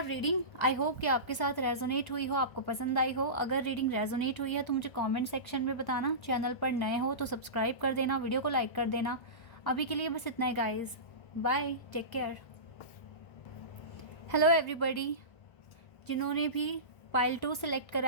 reading. I hope कि आपके साथ रेजोनेट हुई हो, आपको पसंद आई हो। अगर रीडिंग रेजोनेट हुई है तो मुझे कमेंट सेक्शन में बताना। चैनल पर नए हो तो सब्सक्राइब कर देना, वीडियो को लाइक कर देना। अभी के लिए बस इतना ही guys, bye, take care. Hello everybody, जिन्होंने भी पाइल 2 सिलेक्ट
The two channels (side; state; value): right; late; 1.1 ms